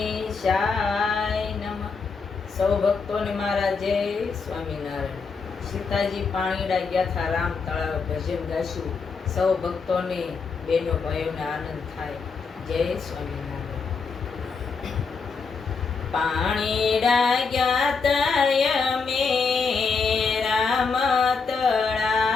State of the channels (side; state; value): right; quieter; 5.0 dB